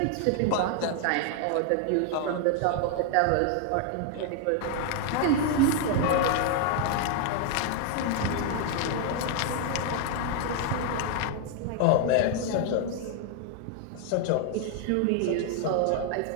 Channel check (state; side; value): different; both; correlation 0.00